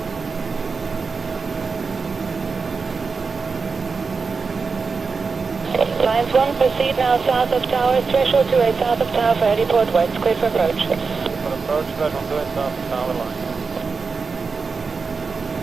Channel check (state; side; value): quieter; left; 4.8 dB